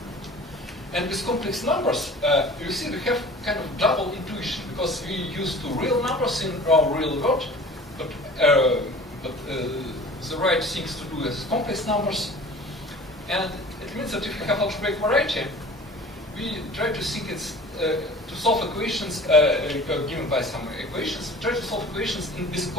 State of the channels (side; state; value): both; normal; correlation 0.43